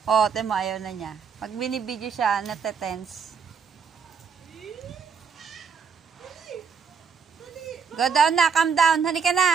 Oh, temo, ayaw na niya. Pag binibidyo siya, natetense. Go down na, calm down. Halika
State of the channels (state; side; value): quieter; left; 6.3 dB